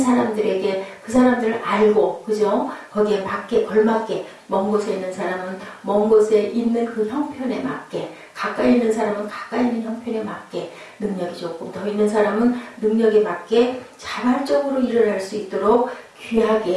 그 사람들을 알고, 그죠? 거기에 맞게 걸맞게, 먼 곳에 있는 사람은 먼 곳에 있는 그 형편에 맞게, 가까이 있는 사람은 가까이 있는 형편에 맞게, 능력이 조금 더 있는 사람은 능력에 맞게 자발적으로 일을 할 수 있도록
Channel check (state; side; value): identical; both; correlation 1.00